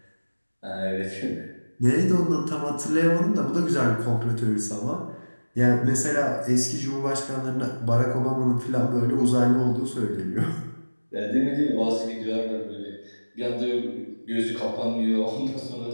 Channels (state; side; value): inverted; both; correlation -1.00